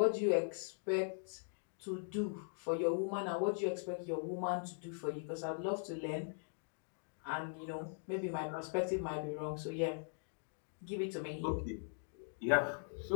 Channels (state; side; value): silent; right; digital silence